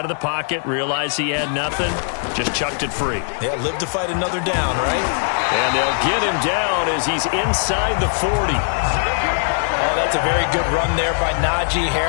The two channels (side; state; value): right; silent; digital silence